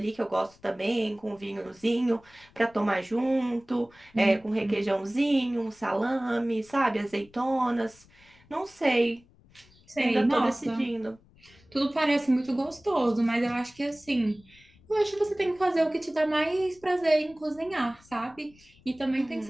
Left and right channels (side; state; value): left; noise; rumble, 28 dB below the sound